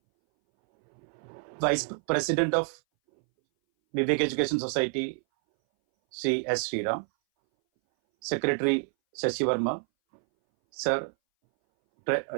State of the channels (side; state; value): left; silent; 59 dB below the other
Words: Vice President of Vivek Education Society, Sri S. Sriram, Secretary Shashi Verma, Sir,